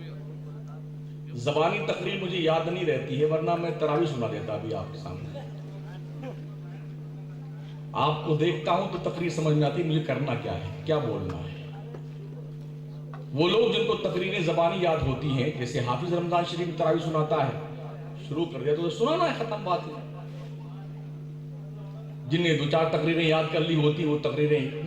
زبانی تقریر مجھے یاد نہیں رہتی ہے ورنہ میں تراویح سنا دیتا ابھی آپ کے سامنے. آپ کو دیکھتا ہوں تو تقریر سمجھ میں آتی ہے مجھے کرنا کیا ہے، کیا بولنا ہے. وہ لوگ جن کو تقریریں زبانی یاد ہوتی ہیں، جیسے حافظ رمضان شریف تراویح سناتا ہے، شروع کر دیا تو سنانا ہے، ختم بات ہے. جن نے 2-4 تقریریں یاد کر لی ہوتی وہ تقریریں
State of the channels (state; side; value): identical; both; correlation 1.00